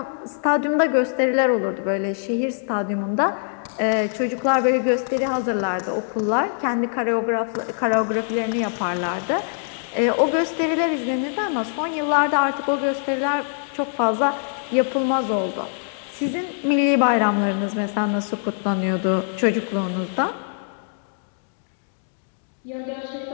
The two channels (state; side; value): silent; right; digital silence